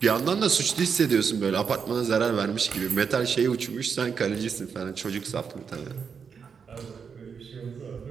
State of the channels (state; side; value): quieter; left; 6.3 dB